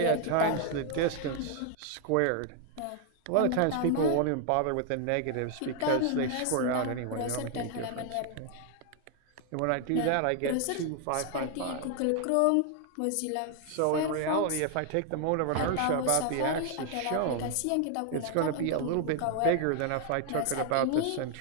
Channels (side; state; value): both; different; correlation 0.00